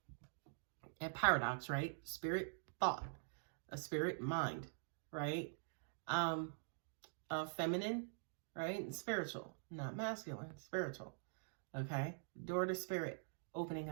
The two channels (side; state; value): left; silent; digital silence